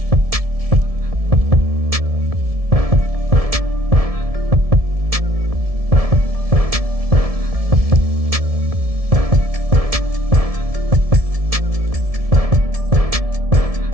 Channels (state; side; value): late; left; 1.7 ms